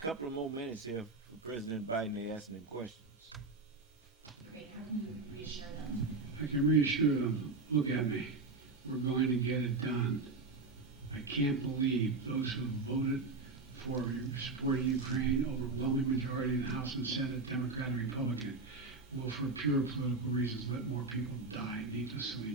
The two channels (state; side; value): quieter; left; 3.7 dB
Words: of more minutes here for President Biden to ask them questions. Great. How can you reassure them? I can reassure them. Look at me. We're going to get it done. I can't believe those who voted for supporting Ukraine, overwhelming majority in the House and Senate, Democrat and Republican, will, for pure political reasons, let more people die needlessly